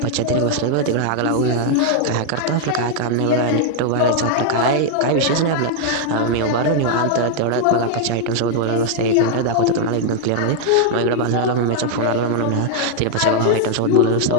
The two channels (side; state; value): both; different; correlation 0.00